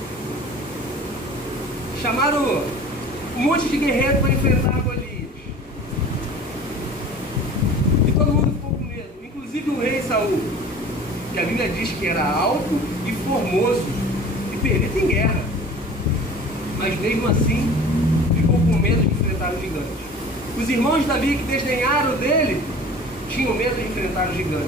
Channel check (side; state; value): both; normal; correlation 0.42